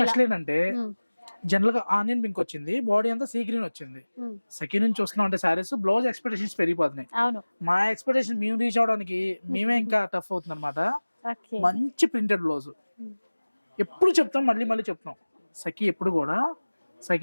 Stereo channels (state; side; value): inverted; both; correlation -1.00